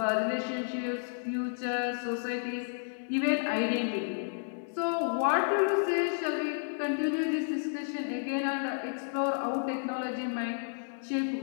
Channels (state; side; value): silent; right; digital silence